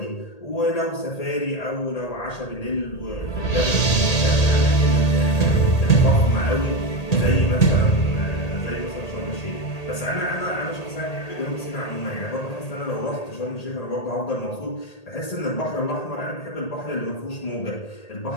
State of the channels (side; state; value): right; late; 1.8 ms